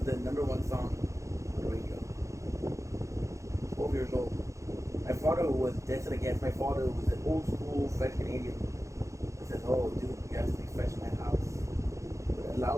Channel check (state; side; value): late; left; 0.15 ms